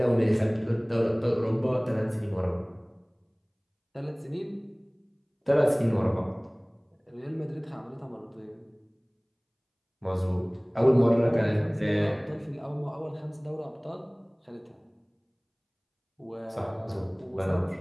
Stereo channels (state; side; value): identical; both; correlation 1.00